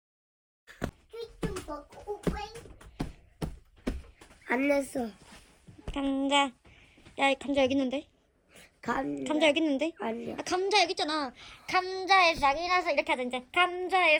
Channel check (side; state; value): both; identical; correlation 1.00